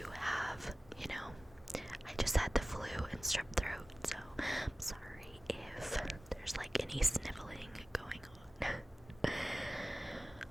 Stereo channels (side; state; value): both; normal; correlation 0.96